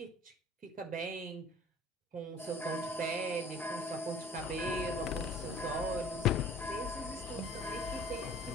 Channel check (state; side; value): normal; both; correlation 0.50